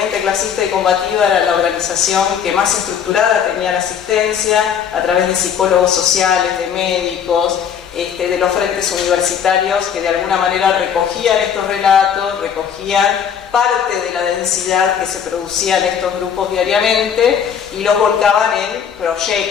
clasista y combativa era la organización que más estructurada tenía la asistencia a través de psicólogos sociales, de médicos, de los frentes universitarios que de alguna manera recogían estos relatos, recogían parte de la densidad que se producía en estos grupos diariamente y los volcaban en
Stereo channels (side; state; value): right; quieter; 8.0 dB